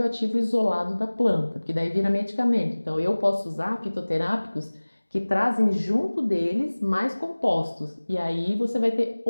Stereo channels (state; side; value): inverted; both; correlation -1.00